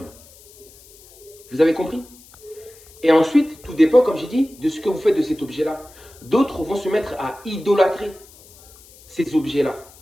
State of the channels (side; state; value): left; noise; hiss, 24 dB below the sound